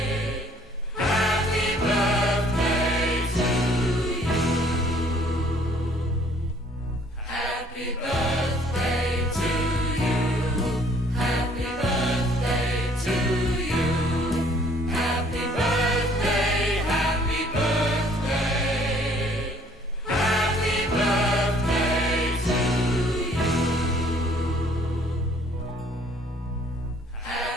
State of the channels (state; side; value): normal; both; correlation 0.59